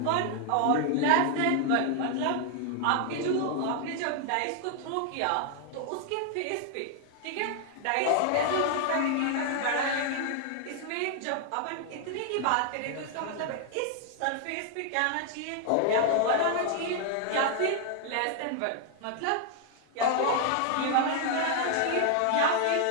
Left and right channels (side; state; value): both; different; correlation 0.00